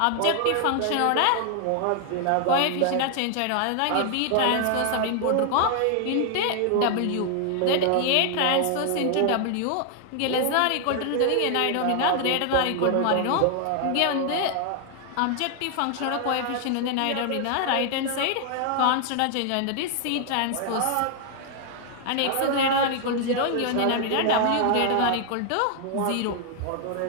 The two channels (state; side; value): different; both; correlation 0.00